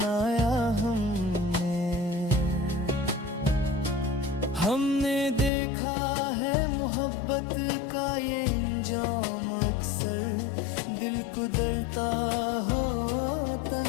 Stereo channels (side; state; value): right; drops out; at 5.5 s